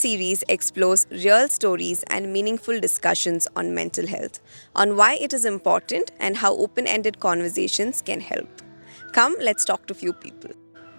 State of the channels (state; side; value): inverted; both; correlation -1.00